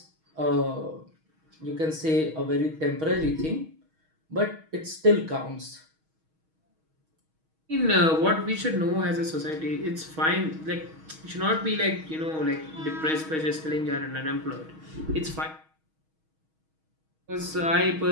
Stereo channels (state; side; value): late; left; 6.3 ms